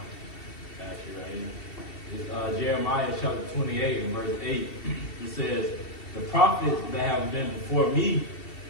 you right here. Jeremiah chapter 28 and verse 8. It says, "The prophets that have been before me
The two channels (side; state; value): right; late; 2.7 ms